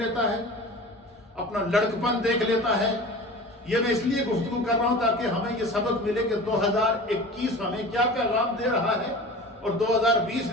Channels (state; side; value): normal; both; correlation 0.36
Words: ہے، اپنا لڑکپن دیکھ لیتا ہے۔ یہ میں اس لیے گفتگو کر رہا ہوں تاکہ ہمیں یہ سبق ملے کہ 2021 ہمیں کیا پیغام دے رہا ہے اور 2020